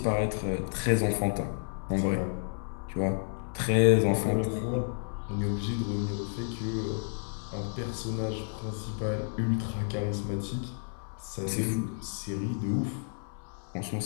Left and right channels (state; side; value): silent; right; 57 dB below the other